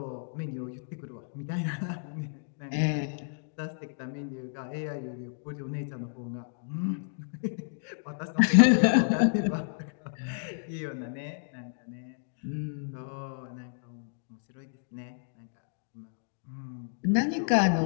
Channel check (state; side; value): silent; right; digital silence